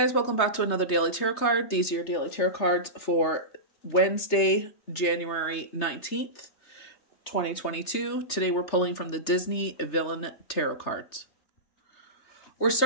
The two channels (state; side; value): late; right; 3.3 ms